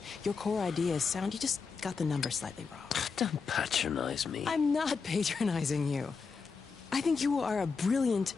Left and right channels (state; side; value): quieter; right; 5.1 dB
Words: Your core idea is sound, you just got the numbers slightly wrong. Don't patronize me. I'm not patronizing you. I think you are a brilliant